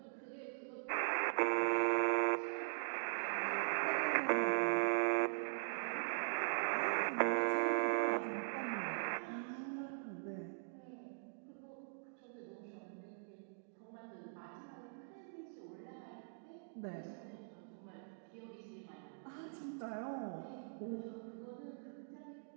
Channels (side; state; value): left; silent; digital silence